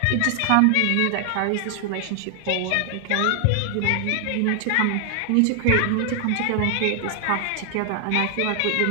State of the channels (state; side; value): different; both; correlation 0.00